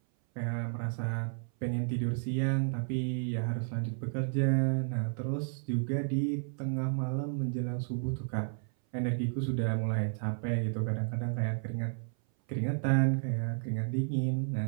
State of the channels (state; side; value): silent; left; 56 dB below the other